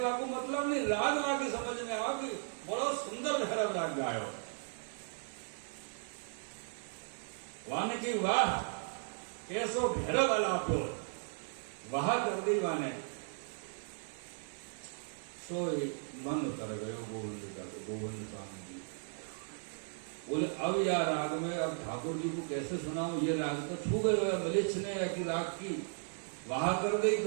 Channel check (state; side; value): silent; left; 54 dB below the other